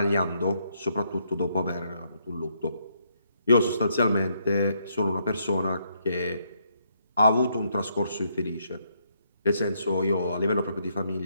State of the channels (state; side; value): inverted; both; correlation -0.74